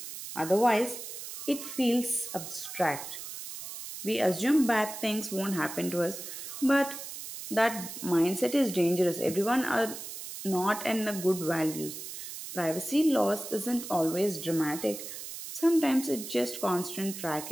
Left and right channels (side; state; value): right; noise; hiss, 9 dB below the sound